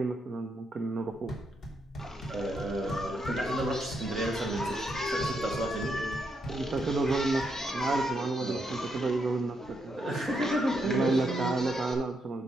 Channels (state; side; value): normal; both; correlation 0.79